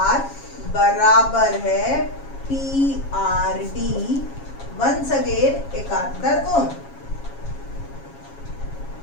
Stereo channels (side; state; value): right; late; 7.3 ms